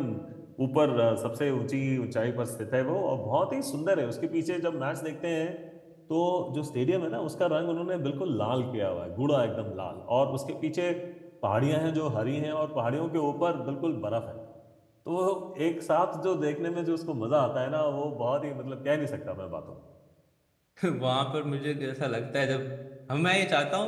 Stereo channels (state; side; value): identical; both; correlation 1.00